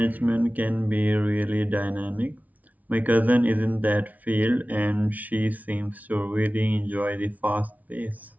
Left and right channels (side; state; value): left; late; 0.073 ms